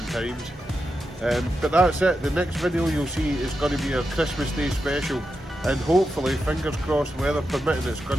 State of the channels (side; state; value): both; normal; correlation 0.88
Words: times. But that's it, the next video you'll see is going to be our Christmas Day special, and hopefully, fingers crossed, weather permitting, it's going